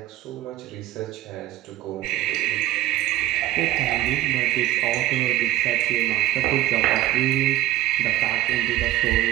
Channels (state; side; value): quieter; left; 14.8 dB